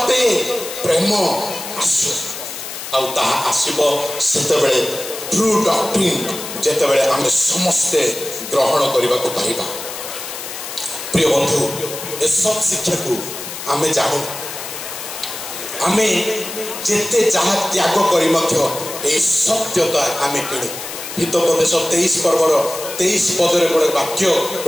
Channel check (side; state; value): left; noise; hiss, 9 dB below the sound